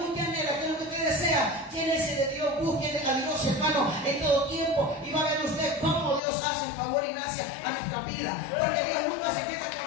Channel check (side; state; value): right; drops out; at 6.2 s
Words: usted anhela? ¿Qué es lo que usted desea? Llénese de Dios, busque a Dios, hermano, en todo tiempo, y va a ver usted cómo Dios hace favor y gracia a nuestra vida, porque Dios nunca se queda con